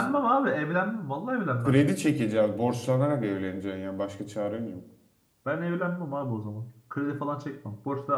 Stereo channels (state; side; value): identical; both; correlation 1.00